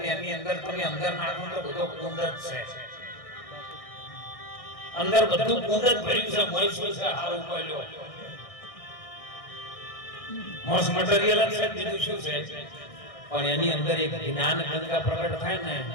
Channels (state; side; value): late; right; 1.6 ms